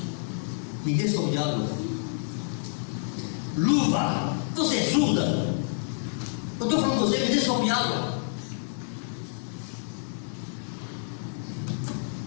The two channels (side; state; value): right; silent; digital silence